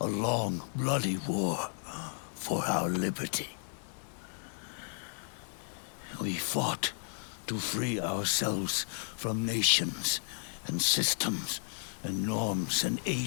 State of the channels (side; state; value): right; silent; digital silence